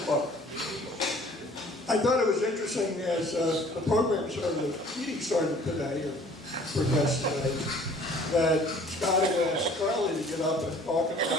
book. I thought it was interesting as the program started, the meeting started today, or progressed today, that Scott had asked Charlie to get up and talk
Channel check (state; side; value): normal; both; correlation 0.53